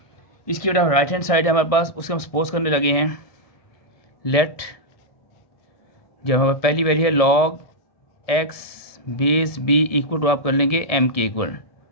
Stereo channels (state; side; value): late; right; 1.7 ms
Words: इसकी बेटा राइट हैंड साइड है हमारे पास, उसके हम सपोज करने लगे हैं लेट, जब हमारे पहली वैल्यू है log x base B equal to आप कर लेंगे एम के इक्वल,